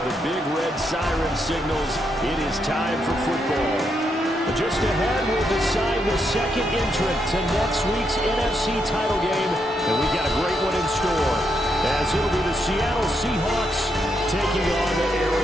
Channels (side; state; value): both; normal; correlation 0.80